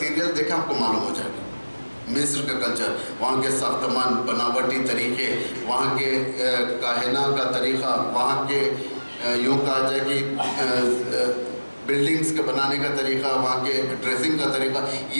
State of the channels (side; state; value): both; inverted; correlation -1.00